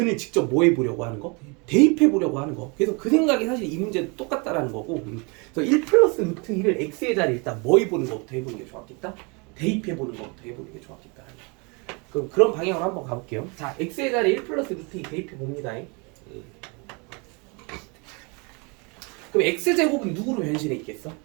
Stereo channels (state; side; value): quieter; left; 30.8 dB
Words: 직접 뭐 해보려고 하는 거? 대입해보려고 하는 거. 그래서 그 생각이 사실 이 문제도 똑같다라는 거고. 그래서 1 플러스 루트 2를 x의 자리에 일단 뭐 해보는 것부터 해보는 게 좋았겠다? 대입해보는 것부터 해보는 게 좋았겠다. 그럼 그런 방향으로 한번 가볼게요. 자, x의 자리에 1 플러스 루트 2 대입해봅니다. 그럼 x제곱은 누구로 변신해 있겠어?